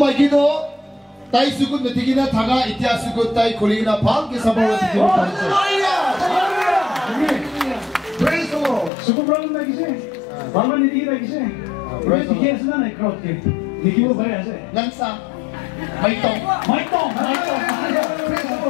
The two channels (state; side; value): drops out; right; at 8.9 s